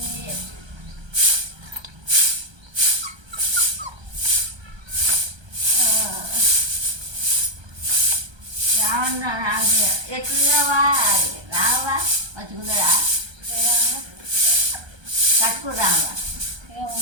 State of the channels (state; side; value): late; left; 1.3 ms